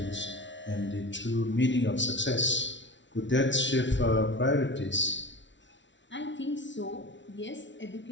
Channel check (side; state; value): right; late; 0.54 ms